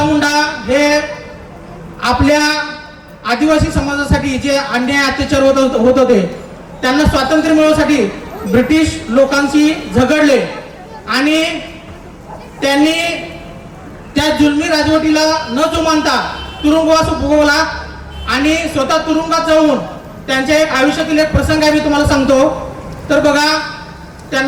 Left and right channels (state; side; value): identical; both; correlation 1.00